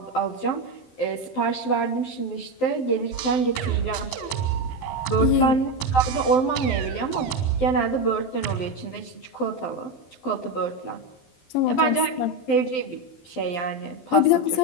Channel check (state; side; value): late; right; 12 ms